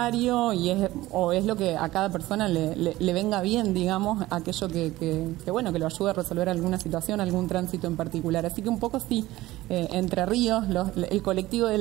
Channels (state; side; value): quieter; left; 17.3 dB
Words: y es lo que a cada persona le venga bien, digamos, aquello que lo ayude a resolver alguna situación, algún tránsito en particular. Así que un poco sí, Entre Ríos, el colectivo de